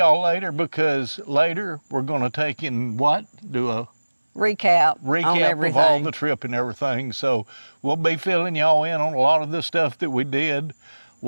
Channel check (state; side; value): inverted; both; correlation -1.00